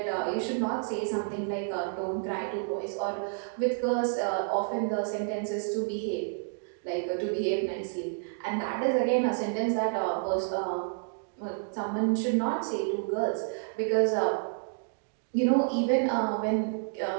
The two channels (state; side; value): silent; left; digital silence